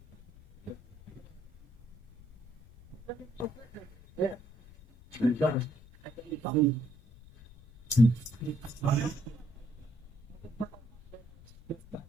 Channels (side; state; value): left; noise; rumble, 21 dB below the sound